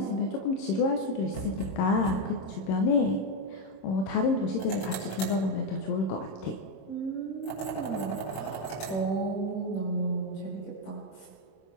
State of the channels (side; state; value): right; late; 26 ms